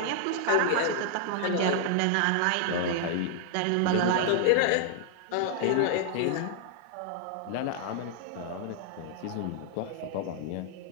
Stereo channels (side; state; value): both; different; correlation 0.00